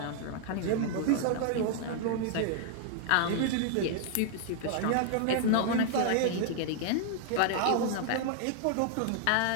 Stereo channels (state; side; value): different; both; correlation 0.00